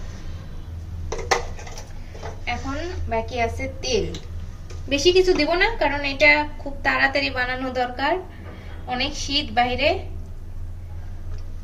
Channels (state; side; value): identical; both; correlation 1.00